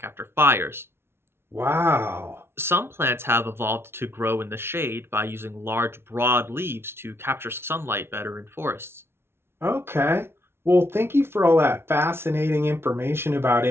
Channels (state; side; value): late; left; 0.12 ms